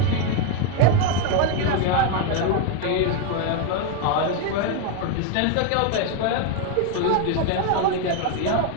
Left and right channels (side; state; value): both; different; correlation 0.01